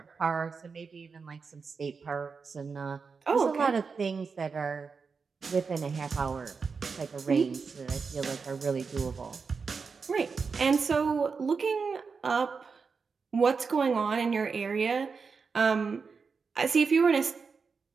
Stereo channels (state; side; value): quieter; left; 5.1 dB